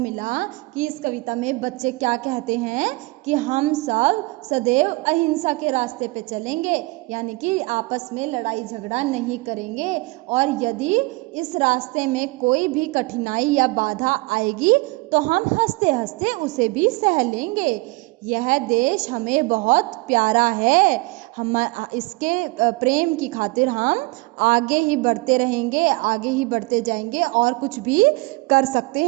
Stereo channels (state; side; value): quieter; left; 24.6 dB